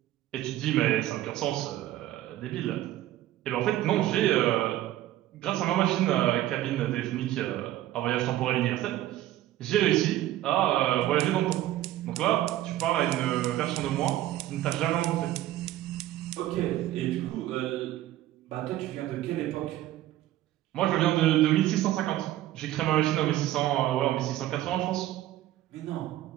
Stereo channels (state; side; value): quieter; left; 14.3 dB